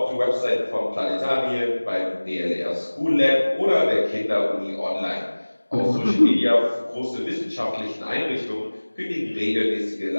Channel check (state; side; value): inverted; both; correlation -1.00